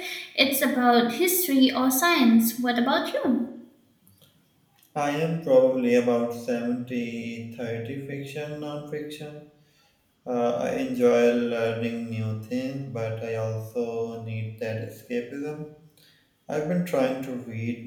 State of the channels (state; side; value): identical; both; correlation 1.00